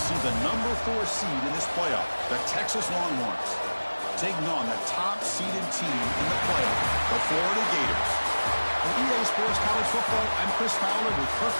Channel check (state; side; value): inverted; both; correlation -1.00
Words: see the number 4 seed in this playoff, the Texas Longhorns, taking on the top-seeded team in the playoff, the Florida Gators. For EA Sports College Football, I'm Chris Fowler with Kirk